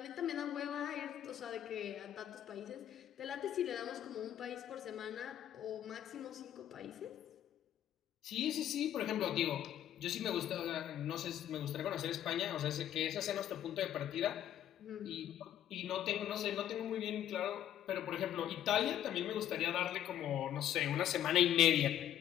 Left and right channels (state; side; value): quieter; right; 11.0 dB